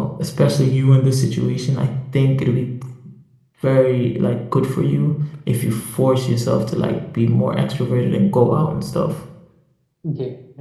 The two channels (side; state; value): both; identical; correlation 1.00